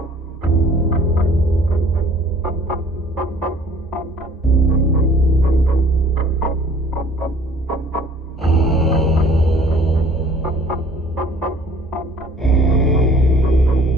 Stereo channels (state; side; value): normal; both; correlation 0.53